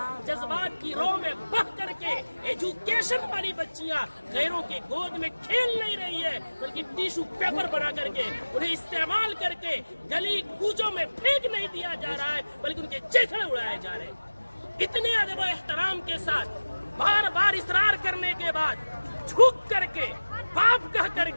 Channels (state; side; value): inverted; both; correlation -1.00